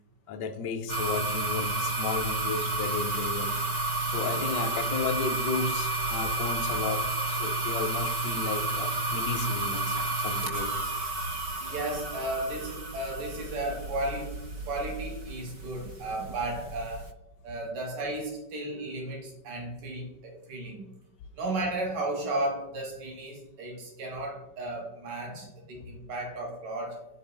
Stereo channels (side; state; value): left; late; 5.2 ms